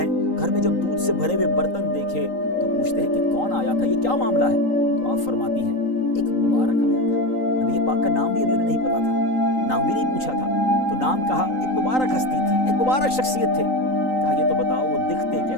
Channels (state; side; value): late; right; 3.8 ms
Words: گھر میں جب دودھ سے بھرے ہوئے برتن دیکھے تو پوچھتے ہیں کہ کون آیا تھا، یہ کیا معاملہ ہے؟ تو آپ فرماتی ہیں ایک مبارک آیا تھا، نبی پاک کا نام بھی ابھی انہیں نہیں پتا تھا، نام بھی نہیں پوچھا تھا، تو نام کہا، ایک مبارک ہستی تھی، ایک مبارک شخصیت تھے۔ کہا یہ تو بتاؤ وہ دکھتے